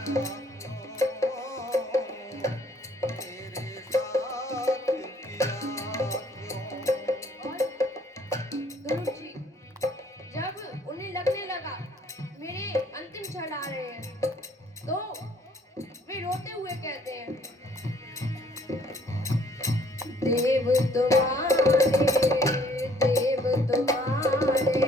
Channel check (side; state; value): both; normal; correlation 0.61